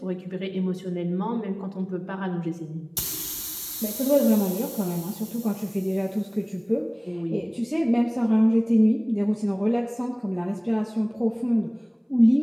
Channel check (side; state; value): both; identical; correlation 1.00